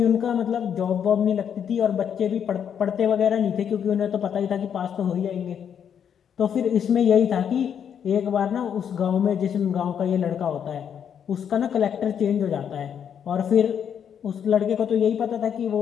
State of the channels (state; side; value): quieter; right; 8.3 dB